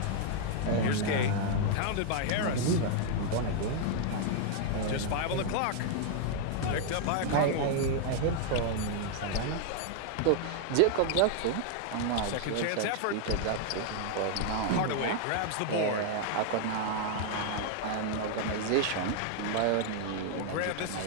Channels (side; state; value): both; different; correlation 0.00